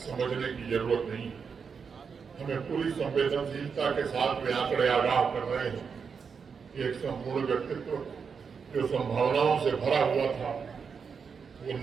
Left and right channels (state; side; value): quieter; left; 6.0 dB